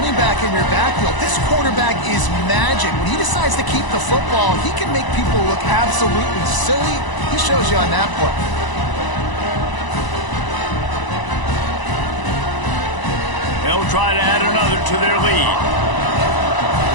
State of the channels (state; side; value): late; right; 1.0 ms